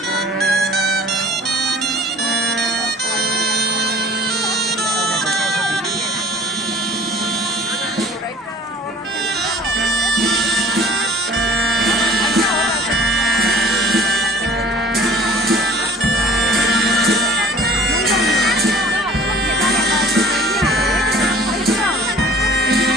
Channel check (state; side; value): normal; both; correlation 0.50